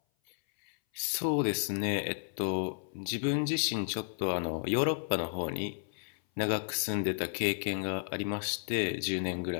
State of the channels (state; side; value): silent; right; 56 dB below the other